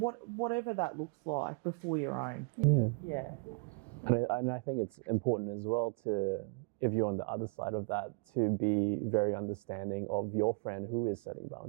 that looks like, before your own. And I think it's important as well to, if you're on the other side of that, to be very understanding of your friend who is setting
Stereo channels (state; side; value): quieter; left; 32.9 dB